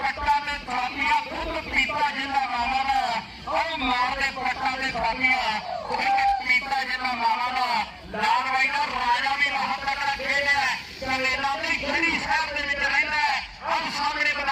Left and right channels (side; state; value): both; identical; correlation 1.00